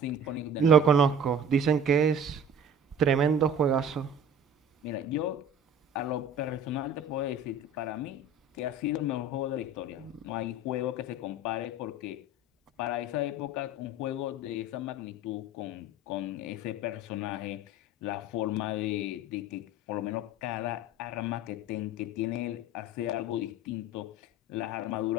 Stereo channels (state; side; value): normal; both; correlation 0.41